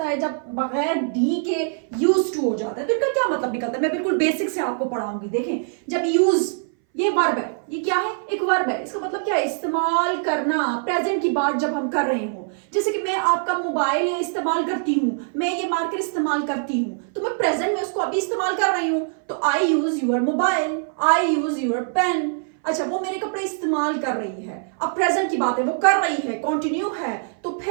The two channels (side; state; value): left; silent; 60 dB below the other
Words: है, जब बगैर डी के यूज्ड टू हो जाता है, तो इनका क्या मतलब निकलता है। मैं बिल्कुल बेसिक से आपको पढ़ाऊंगी। देखें, जब यूज, ये वर्ब है, ये क्या है, एक वर्ब है। इसका मतलब क्या है, इस्तेमाल करना, प्रेजेंट की बात जब हम कर रहे हो। जैसे कि मैं आपका मोबाइल इस्तेमाल करती हूँ, मैं ये मार्कर इस्तेमाल करती हूँ, तो मैं प्रेजेंट में उसको अभी इस्तेमाल कर रही हूँ, तो I use your mobile, I use your pen. अच्छा, वो मेरे कपड़े इस्तेमाल कर रही है, अब प्रेजेंट की बात है, वो कर रही है, कंटिन्यू है। तो